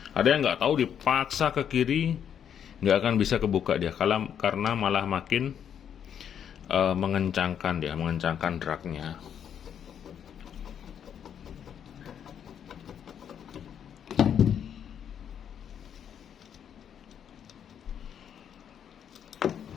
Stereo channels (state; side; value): quieter; right; 8.6 dB